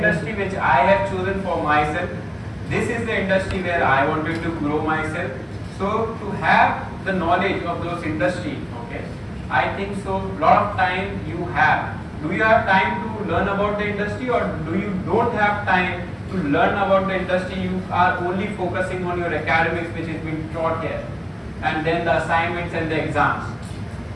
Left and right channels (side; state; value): both; identical; correlation 1.00